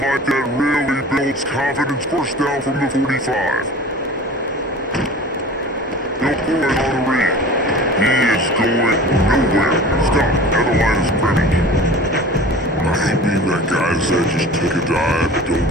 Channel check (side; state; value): both; normal; correlation 0.39